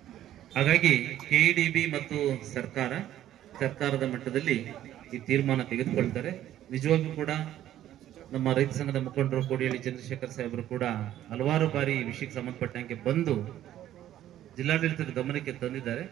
ಹಾಗಾಗಿ KIDB ಮತ್ತು ಸರ್ಕಾರದ ಮಟ್ಟದಲ್ಲಿ ಈ ತೀರ್ಮಾನ ತೆಗೆದುಕೊಳ್ತಾರೆ. ನಿಜವಾಗಿಯೂ ಕೂಡ ನಮ್ಮ ರೈತ ಸಂಘದ ಮುಖಂಡರು ಕೋಡಿಹಳ್ಳಿ ಚಂದ್ರಶೇಖರ್ ಸಾಹೇಬರು ಕೂಡ ಹಲವಾರು ಬಾರಿ ಈ ವಿಷಯಕ್ಕೆ ಸಂಬಂಧಪಟ್ಟಂಗೆ ಬಂದು ಜಿಲ್ಲಾಡಳಿತದ ಗಮನಕ್ಕೆ ತಂದಿದ್ದಾರೆ.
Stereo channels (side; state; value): left; quieter; 12.4 dB